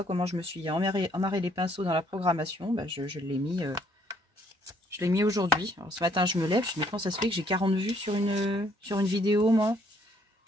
comment je me suis emmarré les pinceaux dans la programmation. Bah, je l'ai mis aujourd'hui. Ce matin, je me lève. Je me dis, comment ça se fait que j'ai 40 vues sur une vidéo, moi?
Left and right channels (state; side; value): normal; both; correlation 0.66